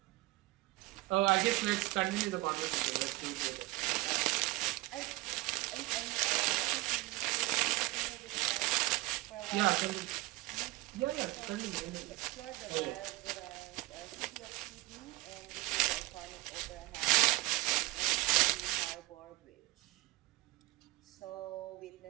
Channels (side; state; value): left; quieter; 20.9 dB